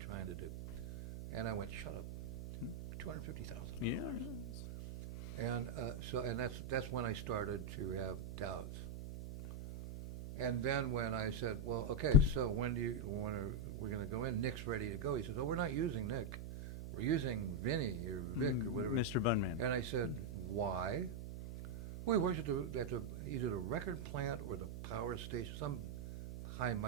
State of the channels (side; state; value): right; noise; hum, 8 dB below the sound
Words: to do. And I went, shut up. 250,000. Yeah. And and that's when I started to have doubts. And then when I said, well, okay, so when we're going to go in? Nick's ready to go. He says, oh, we're not using Nick. We're using Vinny or Vic or whatever. Mr. Bunman. And I said, why? We worked at either the record plant or the power station, some high